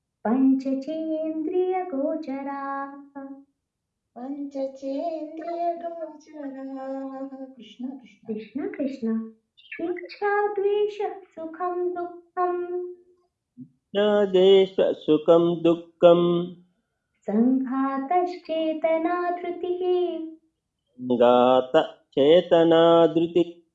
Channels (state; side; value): identical; both; correlation 1.00